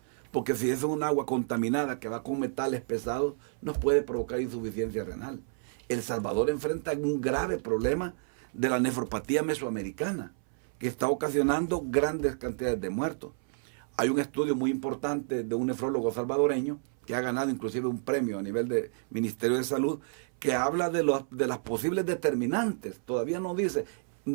porque si es un agua contaminada que va con metales pesados, nos puede provocar insuficiencia renal. El Salvador enfrenta un grave problema de la nefropatía mesoamericana, que está ocasionando grandes cantidades de muertos. Hay un estudio muy importante de un nefrólogo salvadoreño, que ha ganado inclusive un premio a nivel de Ministerio de Salud, que habla de las posibles determinantes. Todavía no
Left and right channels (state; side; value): silent; left; 58 dB below the other